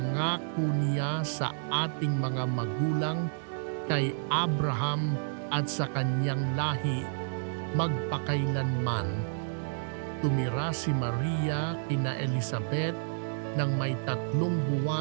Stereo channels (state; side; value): silent; left; digital silence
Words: niya sa ating mga magulang kay Abraham at sa kanyang lahi magpakailanman. Tumira si Maria kina Elizabeth ng may 3